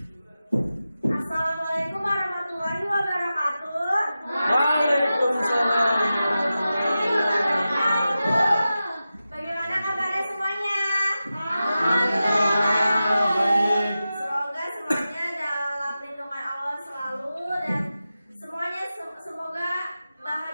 warahmatullahi wabarakatuh. Waalaikumsalam. Bagaimana kabarnya semuanya? Alhamdulillah baik. Semoga semuanya dalam lindungan Allah selalu dan semuanya semoga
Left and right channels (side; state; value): both; inverted; correlation -0.93